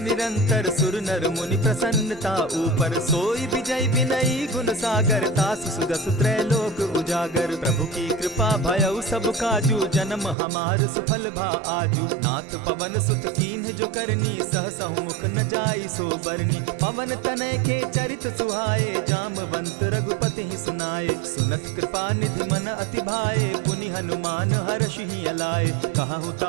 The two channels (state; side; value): drops out; left; at 10.4 s